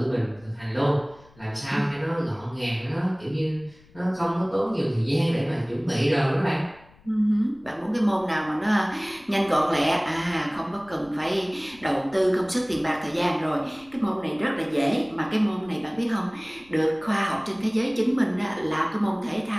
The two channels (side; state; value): left; noise; rumble, 26 dB below the sound